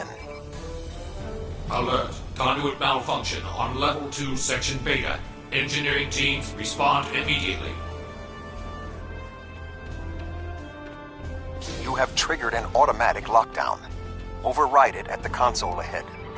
Alert. Conduit malfunction on Level 2, Section Beta. Engineering teams, respond immediately. You have triggered an automatic lockdown. Override it at the console ahead,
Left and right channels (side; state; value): both; identical; correlation 1.00